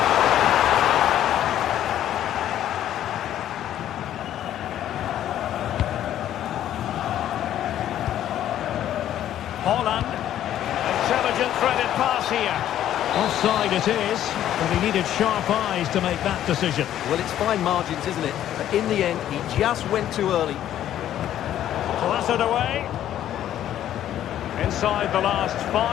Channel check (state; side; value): quieter; right; 11.6 dB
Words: Holland. Intelligent threaded pass here. Offside it is, but he needed sharp eyes to make that decision. Well, it's fine margins, isn't it? But in the end, he just went too early. Clattered away. Inside the last